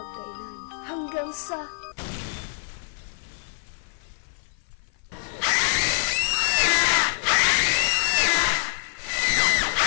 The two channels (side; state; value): right; silent; 55 dB below the other